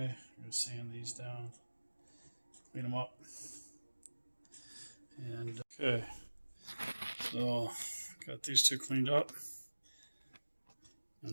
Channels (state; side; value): inverted; both; correlation -1.00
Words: I'm gonna sand these down, clean them up. And okay, so got these 2 cleaned up